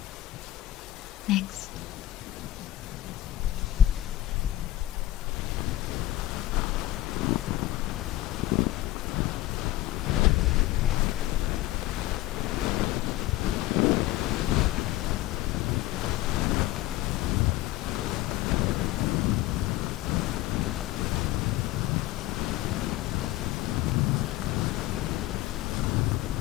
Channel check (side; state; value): right; quieter; 15.6 dB